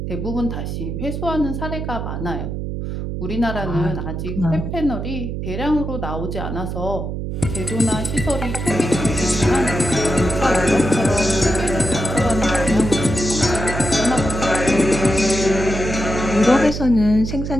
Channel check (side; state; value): right; noise; hum, 4 dB below the sound